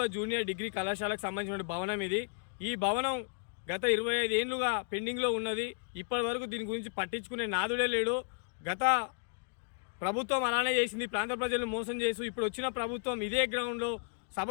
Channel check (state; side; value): silent; right; 55 dB below the other